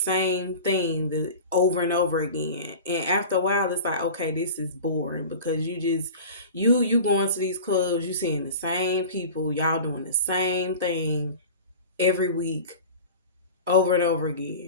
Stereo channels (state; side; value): inverted; both; correlation -0.35